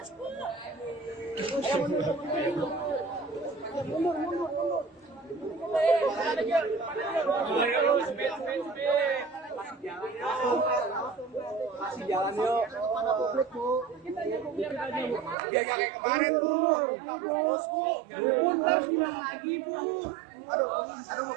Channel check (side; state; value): left; drops out; at 15.4 s